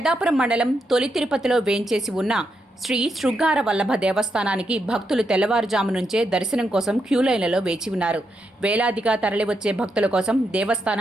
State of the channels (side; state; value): both; normal; correlation 0.82